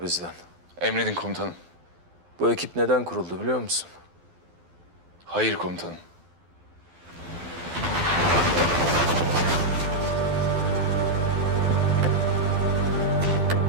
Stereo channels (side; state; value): left; late; 12 ms